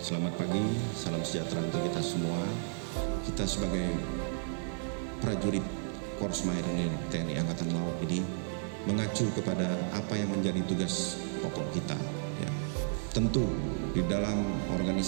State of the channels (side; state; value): left; silent; digital silence